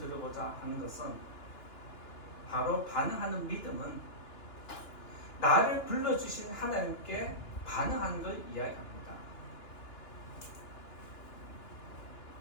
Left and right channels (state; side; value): late; right; 2.9 ms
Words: 하는 것은 바로 반응하는 믿음은 나를 불러주신 하나님께 반응하는 걸 이야기합니다.